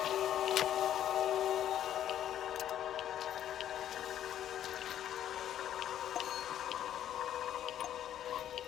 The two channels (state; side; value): quieter; right; 10.9 dB